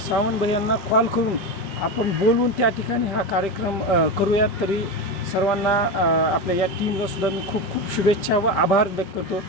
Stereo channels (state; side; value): late; right; 5.1 ms